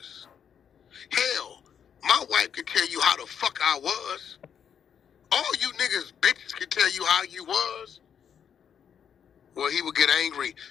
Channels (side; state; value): right; quieter; 8.0 dB